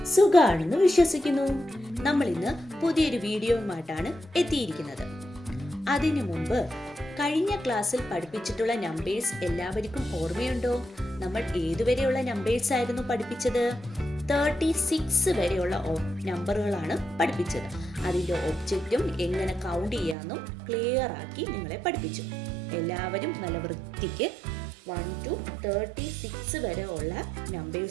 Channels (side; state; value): left; drops out; at 20.2 s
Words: സുഖാണെന്ന് വിശ്വസിക്കുന്നു. നമ്മൾ ഇന്ന് പുതിയൊരു വീഡിയോയുമായിട്ടാണ് എത്തിയിരിക്കുന്നത്. അതിനു മുമ്പ് കഴിഞ്ഞ ക്ലാസ്സിൽ പഠിപ്പിച്ചിട്ടുള്ള നമ്പേഴ്സ് എല്ലാവർക്കും ഓർമ്മയുണ്ടോ? നമ്മൾ ഏതുവരെയുള്ള നമ്പേഴ്സ് ആയിരുന്നു പഠിപ്പിച്ചത്? 36 വരെയുള്ള നമ്പറുകളാണ് പഠിപ്പിച്ചത്. അതിൻ്റെ ഒബ്ജക്റ്റും എങ്ങനെ കൗണ്ട് ചെയ്യാമെന്നും ക്ലിയർ ആക്കി നിങ്ങളെ പഠിപ്പിച്ചു. എല്ലാവരും നല്ല വൃത്തിക്ക് 1 to 36 വരെ ഉള്ള